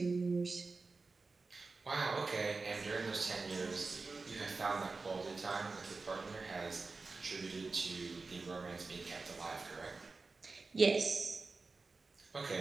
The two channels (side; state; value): left; quieter; 3.9 dB